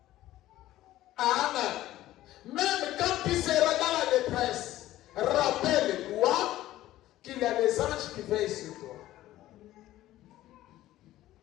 Amen. Même quand tu seras dans la détresse, rappelle-toi qu'il y a des anges qui veillent sur toi.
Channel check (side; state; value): right; quieter; 14.8 dB